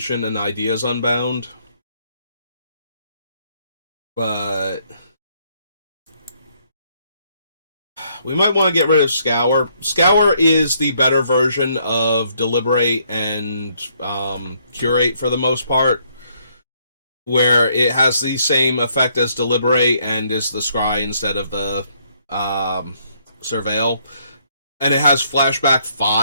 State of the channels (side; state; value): both; inverted; correlation -0.70